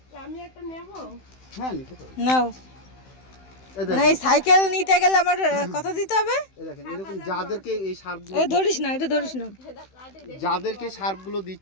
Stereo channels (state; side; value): late; right; 16 ms